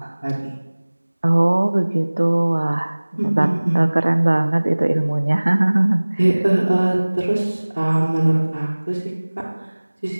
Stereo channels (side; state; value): both; inverted; correlation -1.00